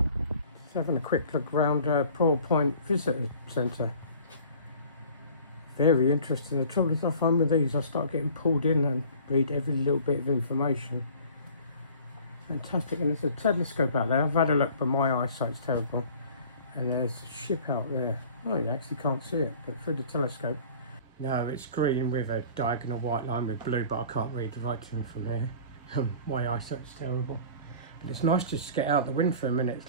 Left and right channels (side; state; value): both; inverted; correlation -0.47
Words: having a quick look around Prawle Point Visitor Centre. Very interesting. The trouble is I find with these I start getting pulled in and read every little bit of information. Fantastic, and there's a telescope out there. I've had a look but my eyesight's terrible. And there's a ship out there. Oh, you actually can't see it, but through the telescope. No, it's green with a diagonal white line with blue, but I can't read the writing from here. My eyesight's terrible. But it's nice just to get out the wind for a minute.